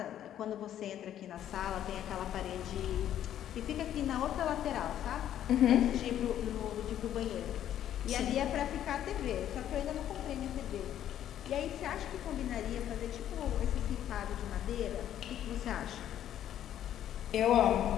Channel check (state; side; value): quieter; right; 11.0 dB